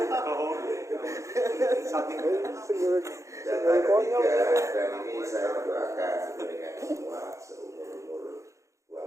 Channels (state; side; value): late; left; 0.15 ms